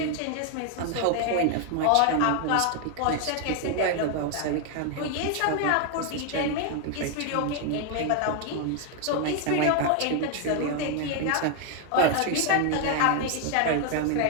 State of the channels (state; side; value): different; both; correlation 0.00